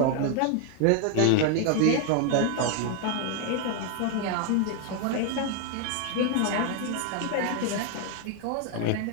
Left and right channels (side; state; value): both; different; correlation 0.00